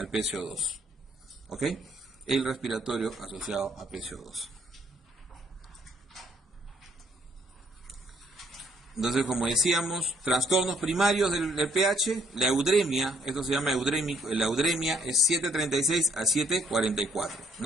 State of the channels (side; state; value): both; normal; correlation 0.67